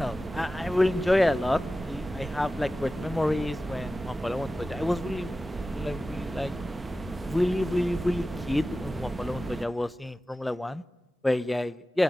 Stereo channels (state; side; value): normal; both; correlation 0.95